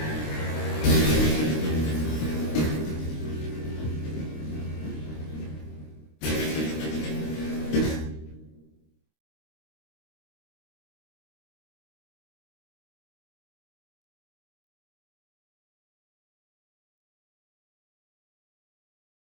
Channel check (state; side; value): late; right; 26 ms